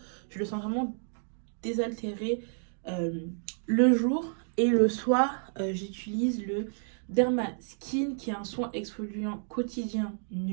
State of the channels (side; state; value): left; silent; digital silence